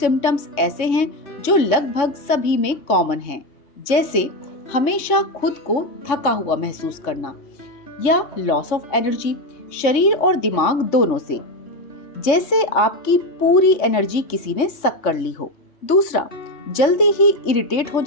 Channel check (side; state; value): right; late; 3.5 ms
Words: ऐसे हैं जो लगभग सभी में कॉमन हैं, जैसे हमेशा खुद को थका हुआ महसूस करना या लॉस ऑफ एनर्जी, शरीर और दिमाग दोनों से, जैसे आपकी पूरी एनर्जी किसी ने सक कर ली हो। दूसरा, जल्दी ही इरिटेट हो